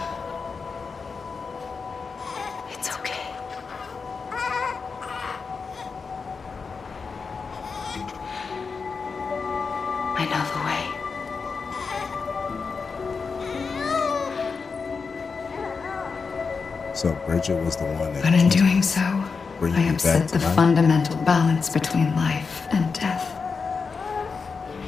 It's okay. I know the way. So Bridget was the one that. But in doing so, bring I you upset back the to life? fundamental balance between life and death.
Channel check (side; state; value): right; quieter; 5.0 dB